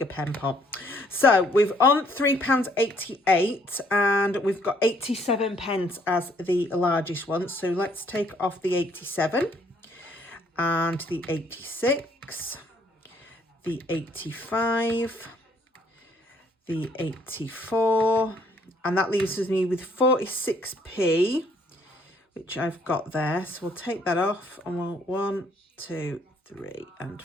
pen pot. So we've on £3.88 and we've got 87 pence as the largest one. So let's take off the 87 and the 86, the 85, the 84, and that leaves me with 46p, which I've got there. So we'll take that off and we'll 1, 2, 3 and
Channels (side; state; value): both; normal; correlation 0.65